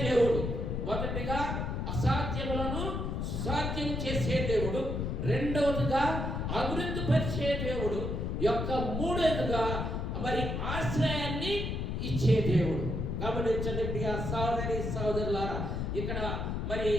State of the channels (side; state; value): left; noise; rumble, 2 dB below the sound